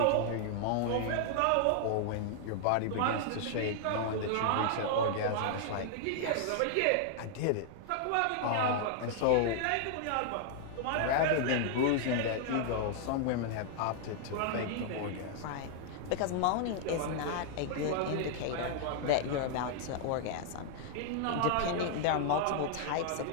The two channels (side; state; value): both; different; correlation -0.01